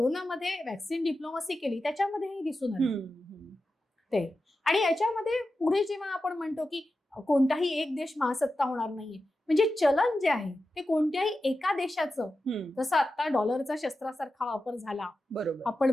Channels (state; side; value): normal; both; correlation 0.92